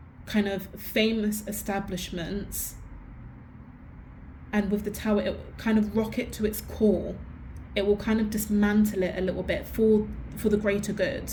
kind of famous establishments, and with the tower, it will kind of rock it to its core. It will kind of dismantle it a little bit for the greater good.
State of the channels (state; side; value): identical; both; correlation 1.00